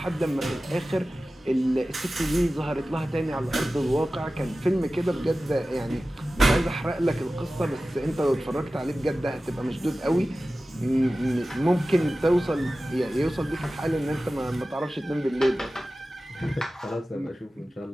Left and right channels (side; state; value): both; normal; correlation 0.96